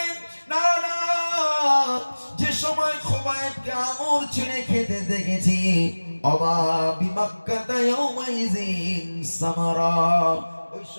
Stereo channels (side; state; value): both; inverted; correlation -1.00